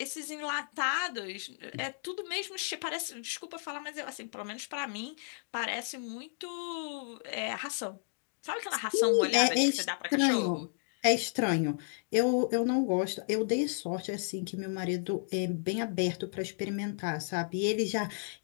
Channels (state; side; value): silent; right; digital silence